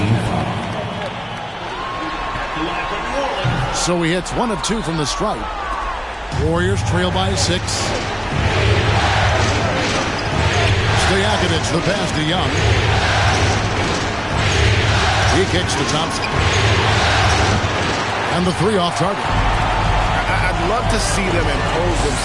So he hits 1 of 2 from the stripe. Warriors trail by 6. Stojakovic, the pass to Young. He kicks to Thompson. And the 3 off target. I'd love to see them impose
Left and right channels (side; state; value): both; identical; correlation 1.00